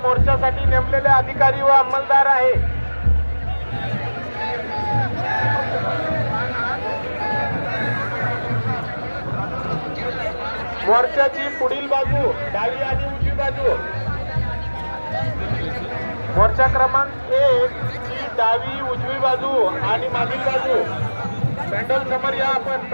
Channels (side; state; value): both; inverted; correlation -1.00